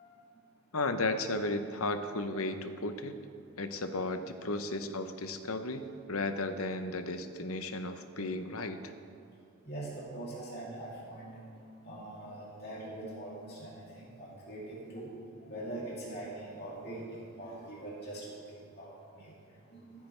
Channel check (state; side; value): normal; both; correlation 0.00